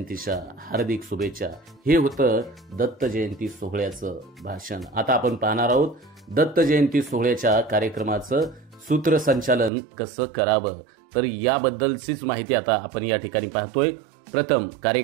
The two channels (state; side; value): drops out; left; at 9.7 s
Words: हार्दिक शुभेच्छा. हे होतं दत्त जयंती सोहळ्याचं भाषण. आता आपण पाहणार आहोत दत्त जयंती सोहळ्याच्या कार्यक्रमाचं सूत्रसंचालन कसं करावं. तर याबद्दलचीच माहिती आता आपण या ठिकाणी पाहतोय. प्रथम